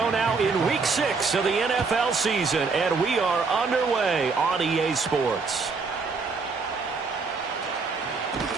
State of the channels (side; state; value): left; quieter; 4.6 dB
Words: now in Week 6 of the NFL season, and we are underway on EA Sports.